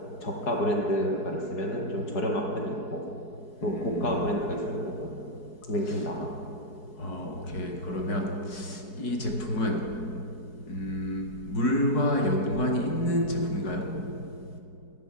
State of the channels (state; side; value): late; right; 4.7 ms